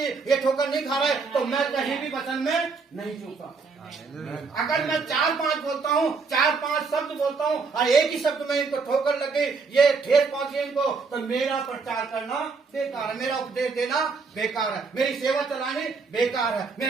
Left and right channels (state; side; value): quieter; left; 4.7 dB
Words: ये ठोकर नहीं खा रहे, तो मैं कहीं भी वचन में नहीं झुका। अगर मैं 4-5 बोलता हूँ, 4-5 शब्द बोलता हूँ और एक ही शब्द में इनको ठोकर लगे, ये ठेस पहुंची इनको, तो मेरा प्रचार करना बेकार है, मेरा उपदेश देना बेकार है, मेरी सेवा चलानी बेकार है,